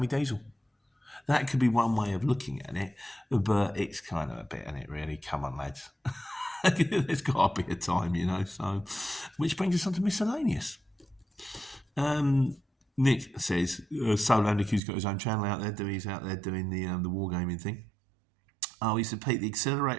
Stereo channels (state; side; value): drops out; left; at 14.8 s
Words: me diesel. That could be one way of looking at it, but it's kind of a bit, isn't it, really? Come on, lads. There's got to be a time, you know. So, which brings us on to miscellaneous. Nick says, Soul Andicu's got his own channel out there. He's out there doing the wargaming thing. Oh, he said, Pete, the